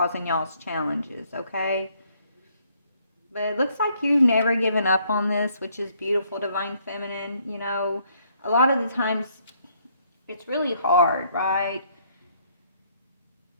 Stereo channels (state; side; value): inverted; both; correlation -0.68